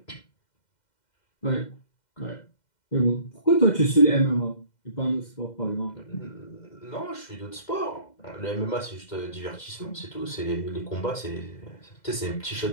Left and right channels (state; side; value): late; right; 2.1 ms